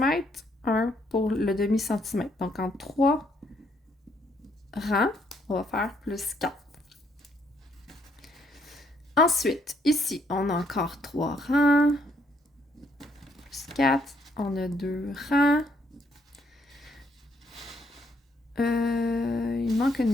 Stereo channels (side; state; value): both; normal; correlation 0.70